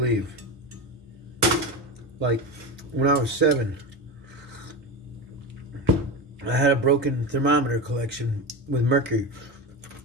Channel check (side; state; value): both; normal; correlation 0.21